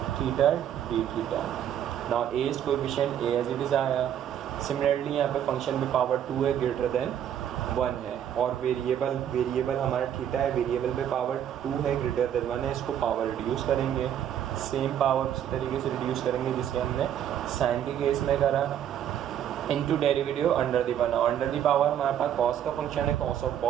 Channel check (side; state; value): left; quieter; 10.0 dB